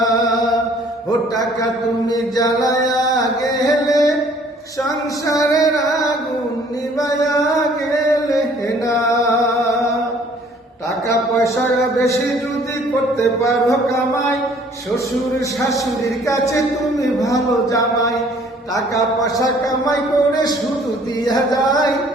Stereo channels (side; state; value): both; normal; correlation 0.57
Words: ও টাকা তুমি জ্বালায়া গেলে সংসারের আগুন নিবায়া গেলে না। টাকা পয়সা বেশি যদি করতে পারো কামাই, শ্বশুর শাশুড়ির কাছে তুমি ভালো জামাই। টাকা পয়সা কামাই করে শুধু দিয়া যায়,